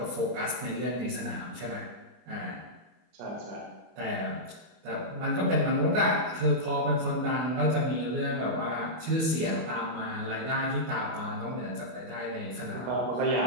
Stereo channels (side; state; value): left; late; 24 ms